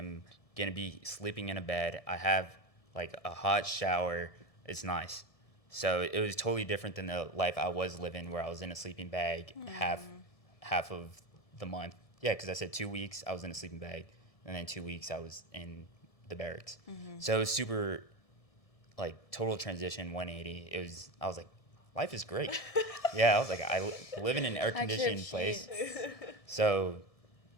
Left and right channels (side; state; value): right; late; 1.7 ms